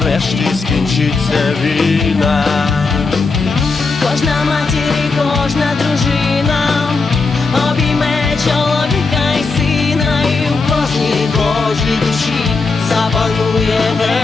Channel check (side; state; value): right; quieter; 4.2 dB